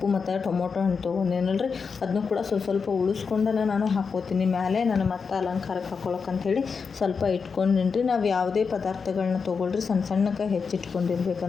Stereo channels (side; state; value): right; quieter; 5.5 dB